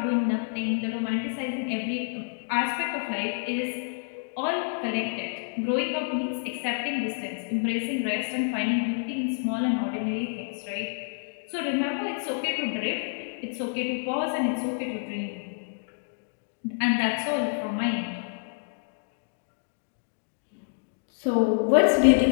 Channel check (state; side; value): silent; right; digital silence